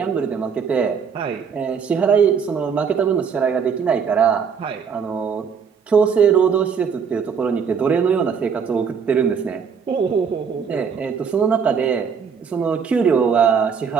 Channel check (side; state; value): left; quieter; 6.5 dB